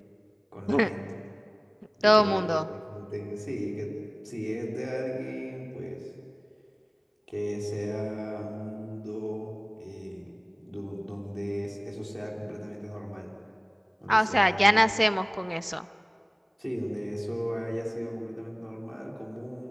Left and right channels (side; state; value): both; identical; correlation 1.00